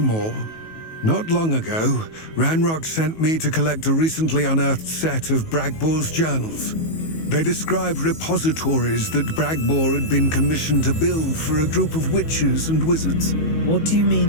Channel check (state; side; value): late; right; 19 ms